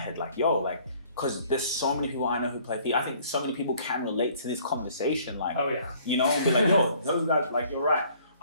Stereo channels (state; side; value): inverted; both; correlation -0.58